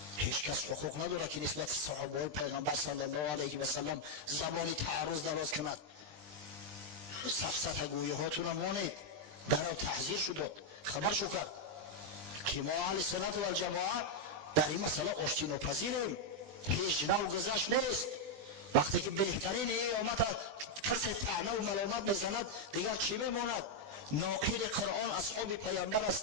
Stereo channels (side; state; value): left; late; 20 ms